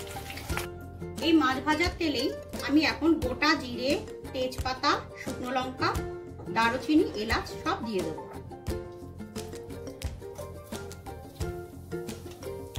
এই মাছ ভাজার তেলেই আমি এখন গোটা জিরে, তেজপাতা, শুকনো লঙ্কা, দারুচিনি, এলাচ সব দিয়ে দেবো।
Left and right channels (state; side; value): identical; both; correlation 1.00